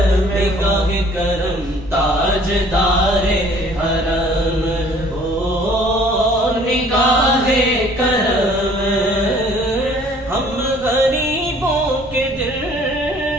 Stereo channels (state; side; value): normal; both; correlation 0.55